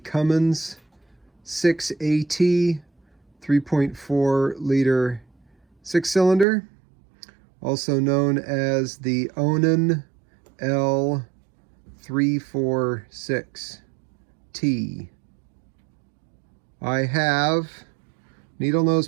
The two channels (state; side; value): drops out; left; at 6.5 s